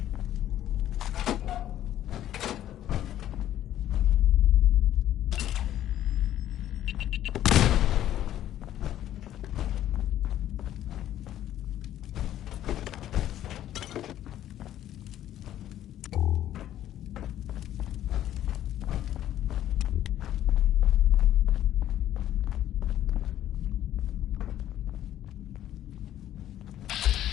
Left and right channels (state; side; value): quieter; right; 12.1 dB